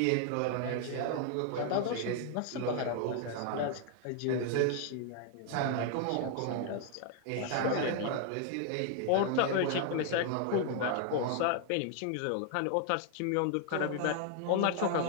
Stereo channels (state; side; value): different; both; correlation 0.00